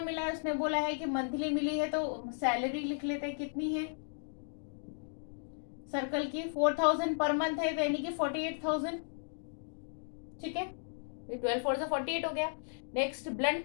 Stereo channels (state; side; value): silent; right; digital silence